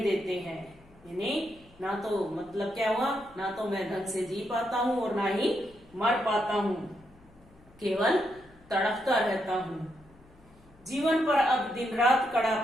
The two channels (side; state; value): left; noise; hum, 27 dB below the sound